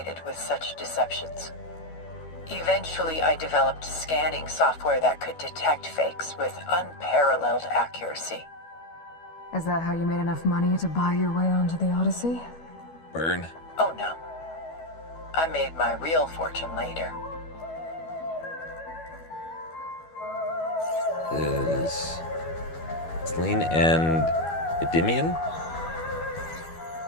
with such deceptions. Eventually, I developed scanning software that could detect fakes with unparalleled accuracy. Is that how you made enough money to buy your way onto the Odyssey? Burn. Oh no. I made my real fortune later. Is Selene and Endymion?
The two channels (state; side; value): late; right; 12 ms